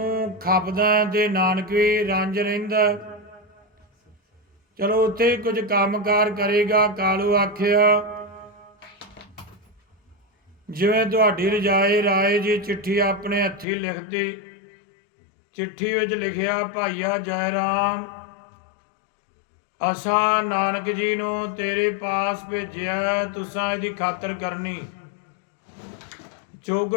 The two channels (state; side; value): drops out; right; at 13.7 s